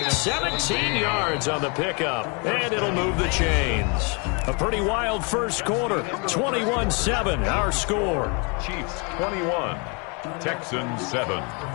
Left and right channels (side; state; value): right; quieter; 33.1 dB